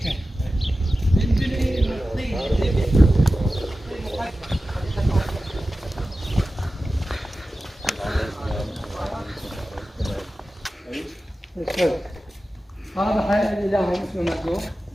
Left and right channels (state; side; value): normal; both; correlation 0.94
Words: هذا حي الإله اسمه مكتوب